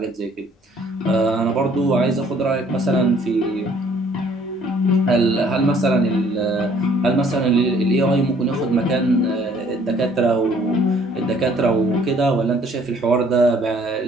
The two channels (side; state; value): both; normal; correlation 0.59